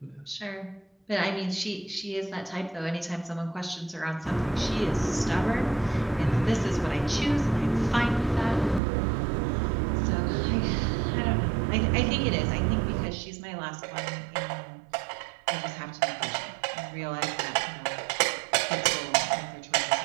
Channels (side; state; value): left; drops out; at 8.8 s